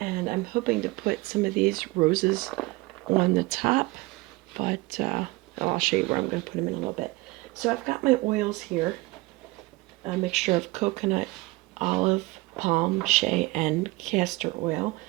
I'm hoping to put some of these roses on the top, but I'll show you where I'm going to put them in a little bit. So I've got my oils here, a mixture of coconut, olive, palm, shea, and castor oil,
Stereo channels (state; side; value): quieter; left; 22.3 dB